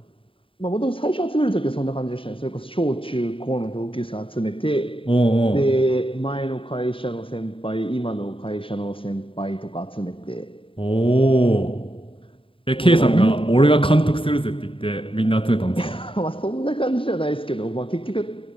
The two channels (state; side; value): late; right; 0.26 ms